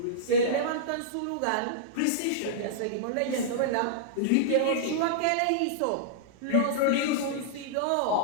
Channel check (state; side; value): different; both; correlation -0.02